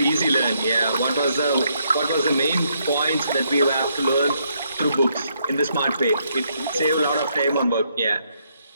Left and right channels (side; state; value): both; inverted; correlation -0.75